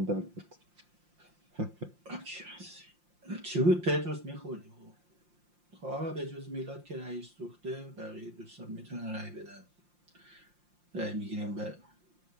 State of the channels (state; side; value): late; left; 5.7 ms